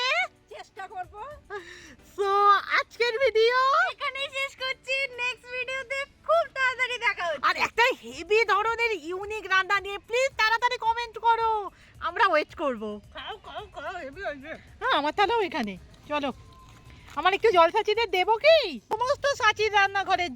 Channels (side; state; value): both; identical; correlation 1.00